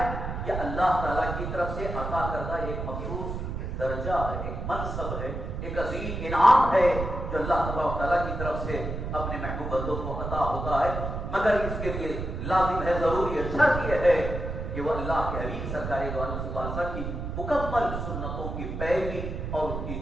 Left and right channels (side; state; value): right; noise; rumble, 5 dB below the sound